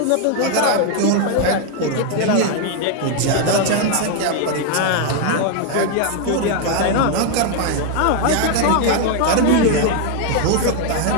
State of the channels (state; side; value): different; both; correlation 0.00